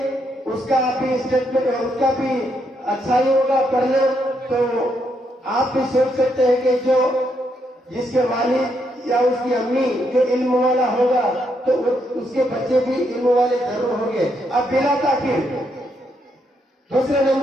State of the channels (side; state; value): both; normal; correlation 0.77